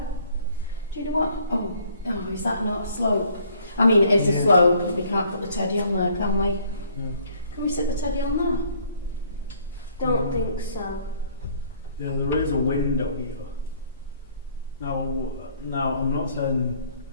Do you know what? Oh, is that not a slope? I mean, it is a Yeah. slope. We can't put the teddy on there, can we? No. Can we sit the teddy on there? Don't think so. Yeah, there is a window here. Now I'm not saying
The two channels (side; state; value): both; inverted; correlation -0.61